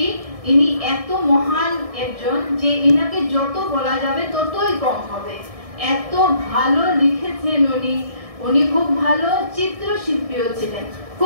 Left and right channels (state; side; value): late; left; 1.6 ms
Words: ইনি এত মহান একজন যে ইনাকে যত বলা যাবে ততই কম হবে। এত ভালো লিখেছেন উনি। উনি খুব ভালো চিত্রশিল্পীও ছিলেন,